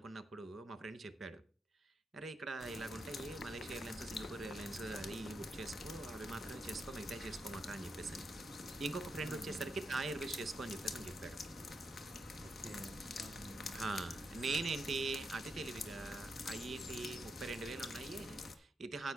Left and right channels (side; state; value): both; normal; correlation 0.82